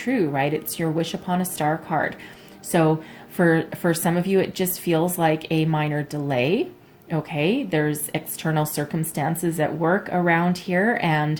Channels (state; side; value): identical; both; correlation 1.00